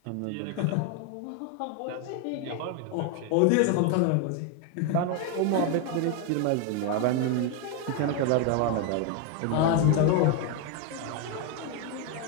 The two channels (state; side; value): different; both; correlation 0.01